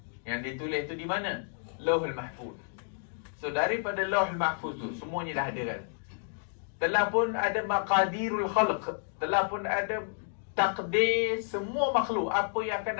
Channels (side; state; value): right; silent; digital silence